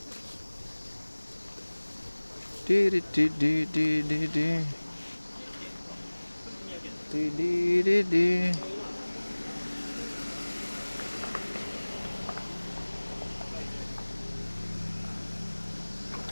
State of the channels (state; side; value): inverted; both; correlation -1.00